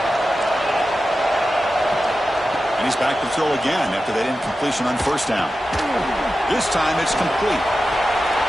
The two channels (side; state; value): both; normal; correlation 0.92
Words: And he's back to throw again after that incompletion on first down. This time it's complete.